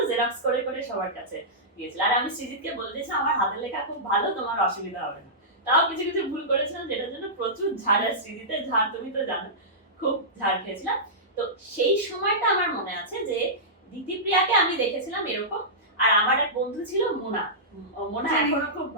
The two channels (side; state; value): both; normal; correlation -0.16